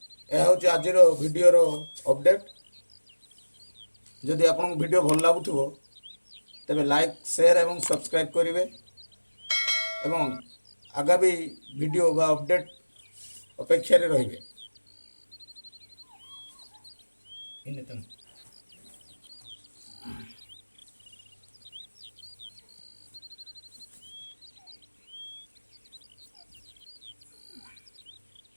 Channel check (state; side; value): inverted; both; correlation -1.00